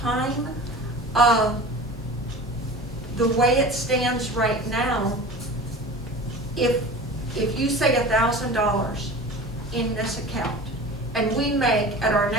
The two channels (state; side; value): normal; both; correlation 0.37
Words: The way it stands right now, if you say $1,000 in this account, and we make at our